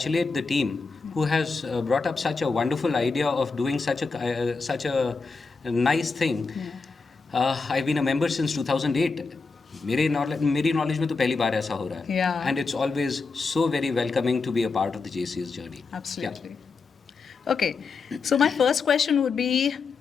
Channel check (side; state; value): right; quieter; 4.5 dB